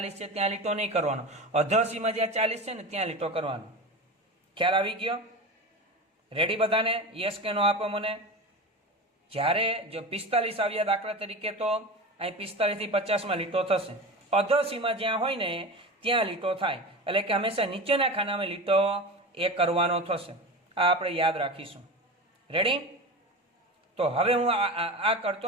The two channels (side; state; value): both; normal; correlation 0.28